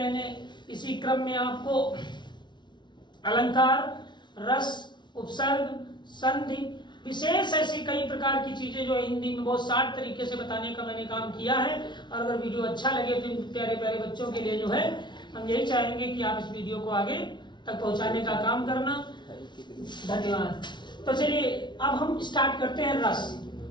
इसी क्रम में आपको अलंकार, रस, उपसर्ग, संधि, विशेष ऐसी कई प्रकार की चीजें जो हिंदी में बहुत शार्ट तरीके से बताने का मैंने काम किया है। और अगर वीडियो अच्छा लगे तो इन प्यारे प्यारे बच्चों के लिए जो है हम यही चाहेंगे कि आप इस वीडियो को आगे तक पहुंचाने का काम करना। धन्यवाद। तो चलिए, अब हम स्टार्ट करते हैं रस।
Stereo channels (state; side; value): late; right; 0.22 ms